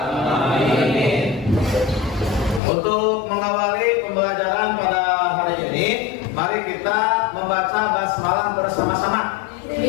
alamin. Untuk mengawali pembelajaran pada hari ini, mari kita membaca basmalah bersama-sama.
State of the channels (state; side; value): drops out; right; at 2.6 s